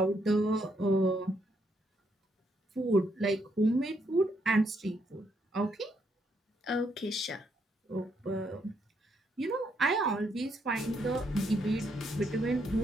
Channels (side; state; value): both; normal; correlation 0.75